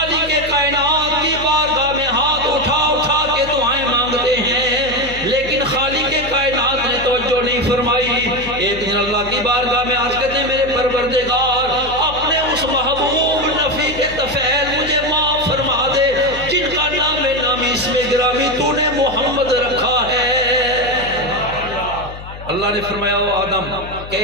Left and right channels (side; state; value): left; noise; hum, 13 dB below the sound